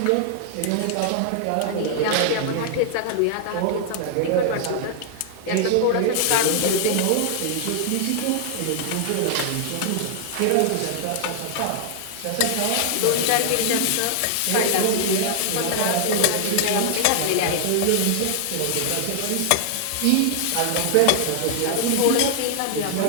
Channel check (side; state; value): both; different; correlation 0.00